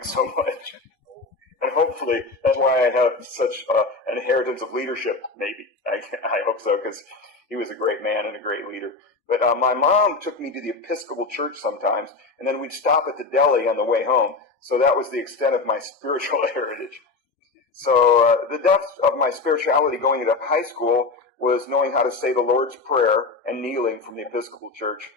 so much. And hopefully that's why I have such an inheritance of leadership, maybe. I hope so, because he was a great man and a great leader. But my mom took me to the Episcopal Church sometimes, and then we'd stop at the deli on the way home. So that was the extent of my spiritual heritage. So the depth of my spirituality going into high school was knowing how to say the Lord's Prayer and kneeling from the Episcopal Church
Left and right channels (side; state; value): right; quieter; 4.0 dB